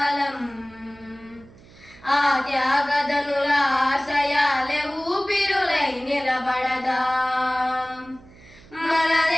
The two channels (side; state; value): right; noise; hum, 24 dB below the sound